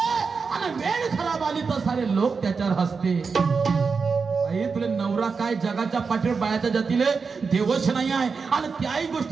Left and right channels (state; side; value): quieter; left; 5.1 dB